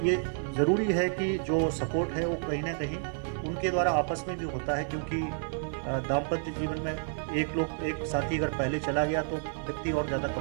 ये ज़रूरी है कि जो सपोर्ट है वो कहीं ना कहीं उनके द्वारा आपस में भी होता है, क्योंकि दाम्पत्य जीवन में एक साथी अगर पहले चला गया तो व्यक्ति और ज़्यादा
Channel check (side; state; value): left; silent; 58 dB below the other